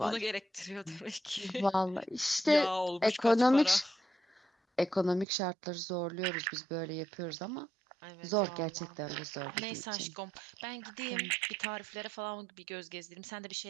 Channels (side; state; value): left; drops out; at 5.2 s